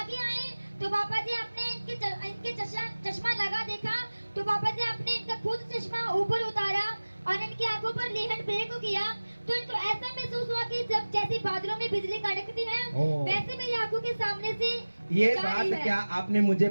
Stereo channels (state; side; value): inverted; both; correlation -1.00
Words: आए तो पापा जी आपने इनके चश्मा लगा देखा, तो पापा जी आपने इनका खुद चश्मा ऊपर उतारा और इनकी आंखों पर लेहन ब्रेक किया। तो इनको ऐसा महसूस हुआ कि जब जैसे बादलों में बिजली कड़कती है ओह। वैसे मेरी आंखों के सामने से ये जा रही बात है। क्या आपने मुझे